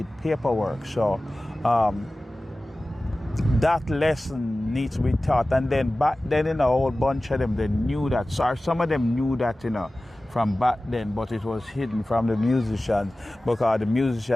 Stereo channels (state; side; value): normal; both; correlation 0.97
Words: paperwork. So that lesson needs to be taught. And then back then, a whole bunch of them, they knew that. So some of them knew that, from back then, but it was hidden from the musicians because the